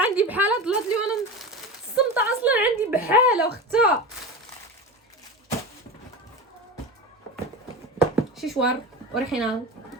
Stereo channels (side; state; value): both; normal; correlation 0.26